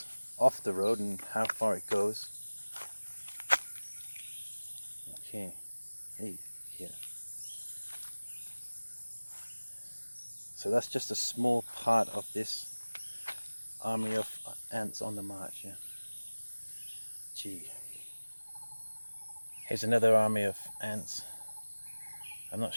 off the road and how far it goes. Okay, hey, here. So that's just a small part of this army of ants on the march, yeah. Gee. Here's another army of ants. I'm not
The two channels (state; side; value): inverted; both; correlation -1.00